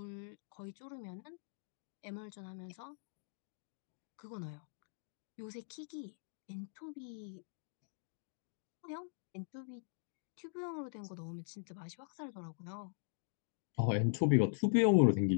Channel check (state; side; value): silent; right; digital silence